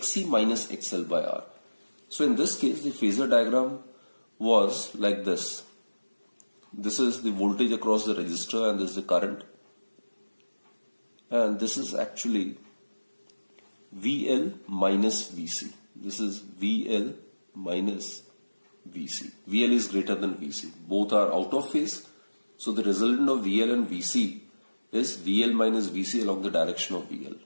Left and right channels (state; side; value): inverted; both; correlation -1.00